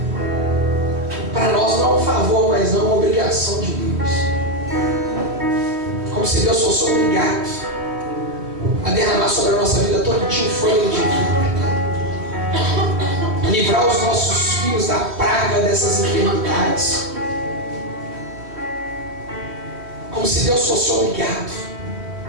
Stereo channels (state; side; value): late; left; 3.2 ms